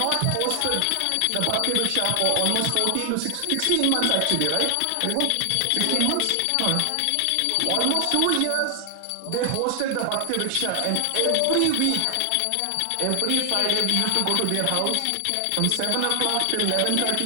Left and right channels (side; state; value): both; different; correlation 0.00